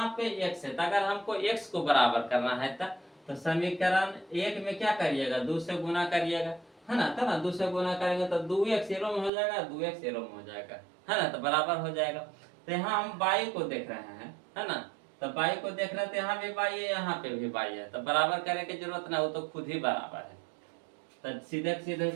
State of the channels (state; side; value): drops out; left; at 9.3 s